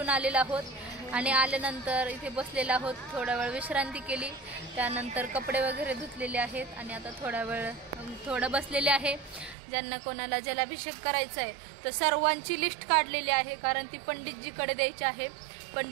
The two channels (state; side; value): drops out; left; at 9.6 s